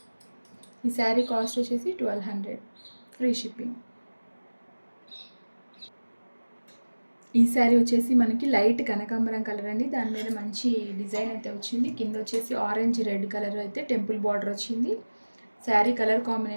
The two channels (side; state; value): both; inverted; correlation -1.00